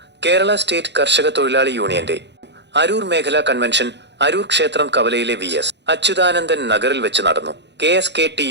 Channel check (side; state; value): left; late; 0.51 ms